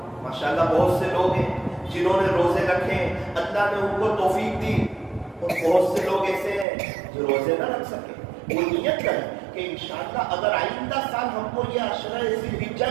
ماشاءاللہ بہت سے لوگ ہیں جنہوں نے روزے رکھے، اللہ نے ان کو توفیق دی، اور بہت سے لوگ ایسے ہیں جو روزے نہ رکھ سکے۔ وہ نیت کریں کہ انشاءاللہ اگر آئندہ سال ہم کو یہ عشرہ ذی الحجہ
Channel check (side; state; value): left; drops out; at 6.7 s